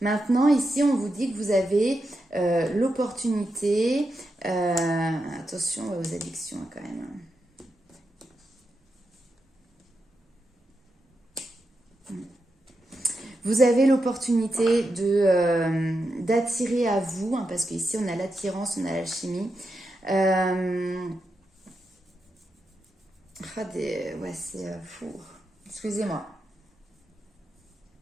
Maintenant, ici, on vous dit que vous avez l'opportunité, attention aux addictions quand même. Vous avez l'opportunité d'attirer à vous, hein, parce qu'ici on a l'attirance, on a l'alchimie. Ouais, c'est fou. Excusez-moi.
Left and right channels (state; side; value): normal; both; correlation 0.87